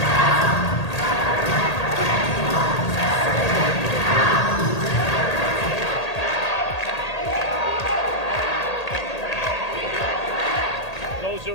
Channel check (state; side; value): late; right; 1.8 ms